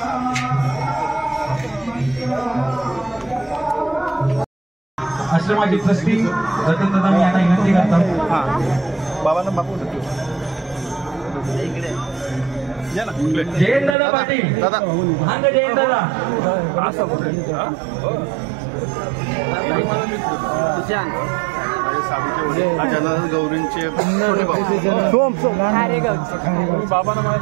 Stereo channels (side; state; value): left; drops out; at 14.0 s